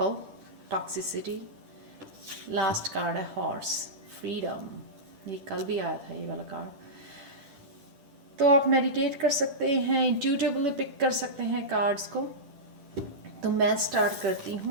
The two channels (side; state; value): left; late; 11 ms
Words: toxicity. Last card है हॉर्स, फ्रीडम। ये कल भी आया था ये वाला कार्ड। तो आप मेडिटेट कर सकते हैं, इंट्यूटिवली पिक कर सकते हैं कार्ड्स को। तो मैं स्टार्ट करती